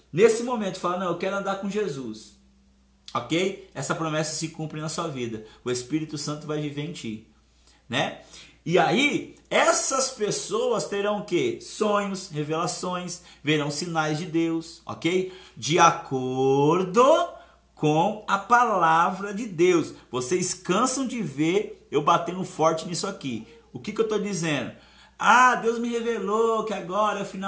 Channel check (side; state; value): both; identical; correlation 1.00